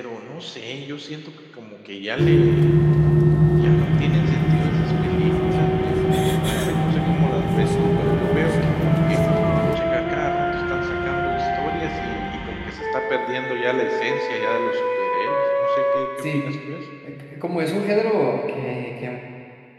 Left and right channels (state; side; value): identical; both; correlation 1.00